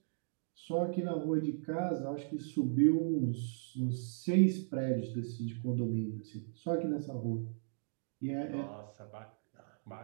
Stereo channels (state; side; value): silent; left; digital silence